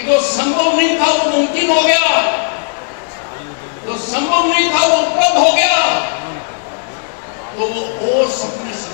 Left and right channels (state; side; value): silent; right; 62 dB below the other